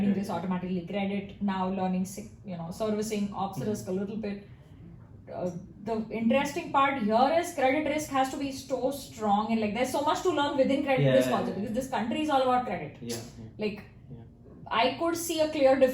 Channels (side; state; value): both; identical; correlation 1.00